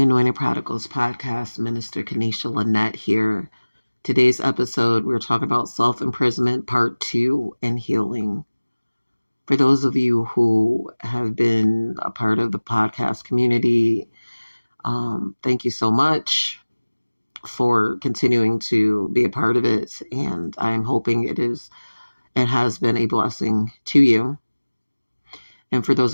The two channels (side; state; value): both; inverted; correlation -1.00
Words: Anointed Prodigals podcast. Minister Kanisha Lynette here. Today's episode, we're talking about self-imprisonment part 2 and healing. For those of you who have been a part of the podcast community, thank you so much for continuing to be a part of it. And I'm hoping it has been a blessing to you. And for